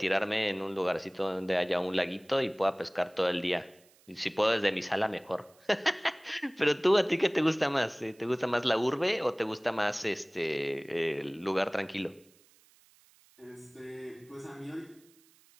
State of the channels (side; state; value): right; noise; hiss, 30 dB below the sound